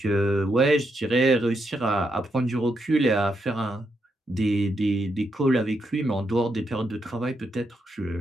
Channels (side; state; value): both; normal; correlation 0.80